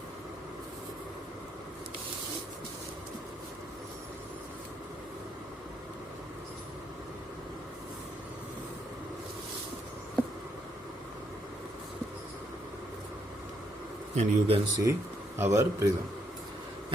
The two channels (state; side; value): normal; both; correlation 0.74